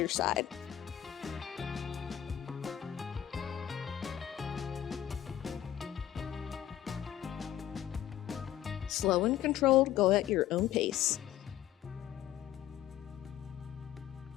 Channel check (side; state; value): right; quieter; 11.6 dB